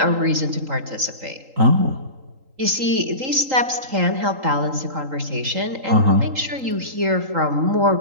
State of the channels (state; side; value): late; left; 3.8 ms